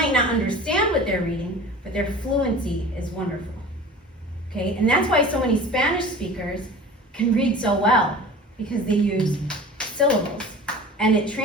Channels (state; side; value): normal; both; correlation 0.40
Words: not understand what they're reading, but their fluency is wonderful. Okay, and that's why so many Spanish speakers can read so well, because they use syllables, and it